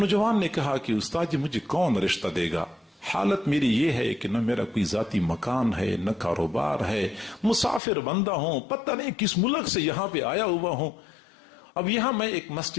نے کہا کہ استاد جی مجھے کون رشتہ دے گا، حالت میری یہ ہے کہ نہ میرا کوئی ذاتی مکان ہے نہ کاروبار ہے، مسافر بندہ ہوں، پتہ نہیں کس ملک سے یہاں پہ آیا ہوا ہوں۔ اب یہاں میں ایک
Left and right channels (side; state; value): right; drops out; at 7.8 s